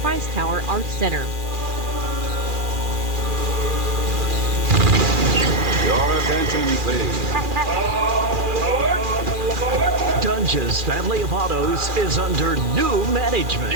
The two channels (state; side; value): late; left; 2.4 ms